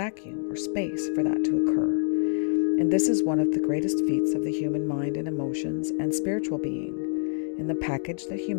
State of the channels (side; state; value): right; silent; digital silence